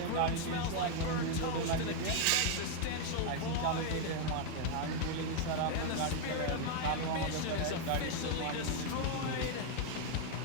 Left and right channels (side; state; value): both; different; correlation 0.00